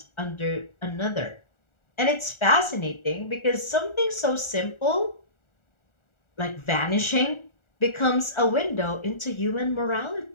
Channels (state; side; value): late; right; 1.4 ms